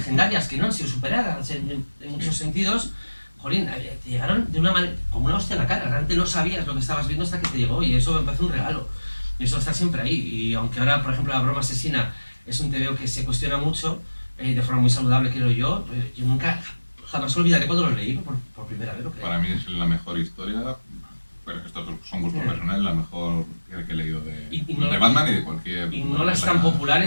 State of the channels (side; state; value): both; inverted; correlation -1.00